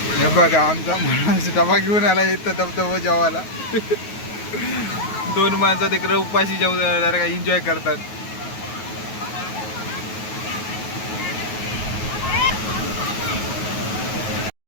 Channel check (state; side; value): late; right; 9.4 ms